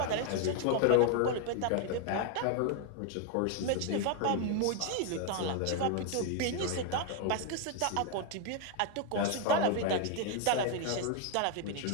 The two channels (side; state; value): both; different; correlation 0.01